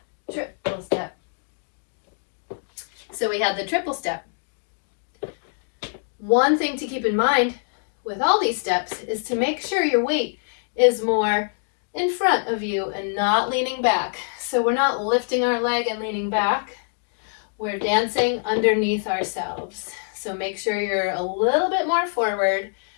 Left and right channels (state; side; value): silent; right; digital silence